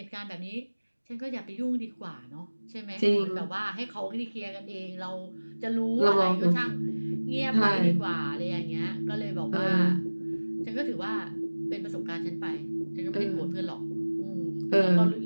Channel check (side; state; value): both; inverted; correlation -1.00